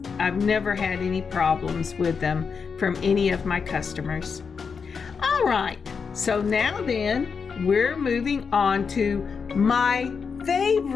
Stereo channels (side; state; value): right; quieter; 5.7 dB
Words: never had any problems with them from any of my customers. All right, so now then we're moving on to my